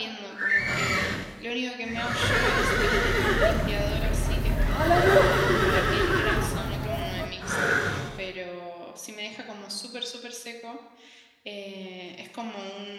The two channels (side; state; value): both; identical; correlation 1.00